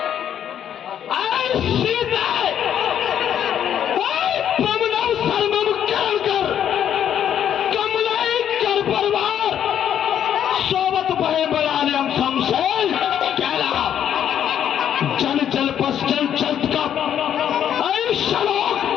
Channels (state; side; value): quieter; right; 9.6 dB